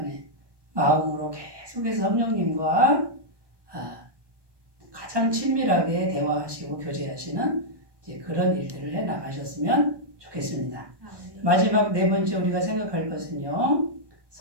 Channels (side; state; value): left; late; 1.2 ms